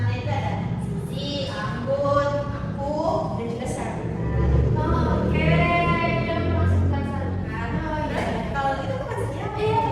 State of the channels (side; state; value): both; identical; correlation 1.00